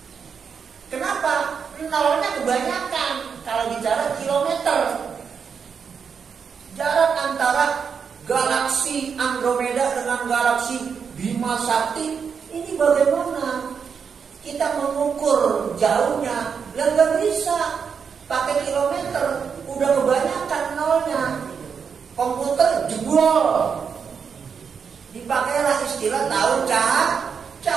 Kenapa? Nolnya kebanyakan. Kalau bicara kilometer, jarak antara galaksi Andromeda dengan galaksi Bima Sakti ini bagaimana? Kita mengukur jauhnya, nggak bisa pakai kilometer, udah kebanyakan nolnya. Komputer jebol, dipakailah istilah tahun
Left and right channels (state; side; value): quieter; left; 6.4 dB